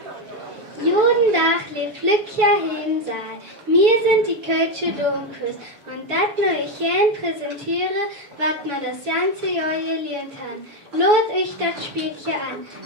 Guten Tag, lieb Flückchen im Saal. Wir sind die Kölsche Domkurs und das wir euch gern präsentiere, was wir das ganze Jahr gelernt haben. Lot euch das Spielchen an.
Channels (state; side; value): late; left; 7.0 ms